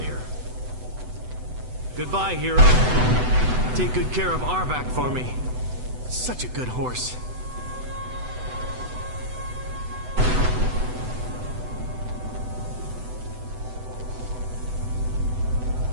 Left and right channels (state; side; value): late; left; 8.0 ms